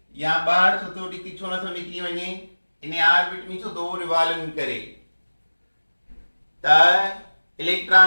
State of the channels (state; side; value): inverted; both; correlation -1.00